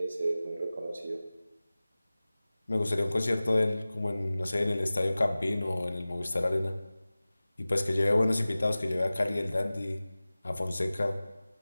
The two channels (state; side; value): inverted; both; correlation -0.98